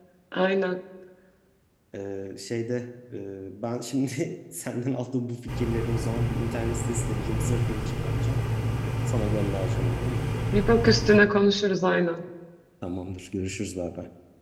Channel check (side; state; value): both; identical; correlation 1.00